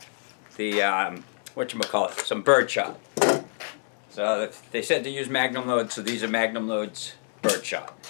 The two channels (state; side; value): silent; right; 60 dB below the other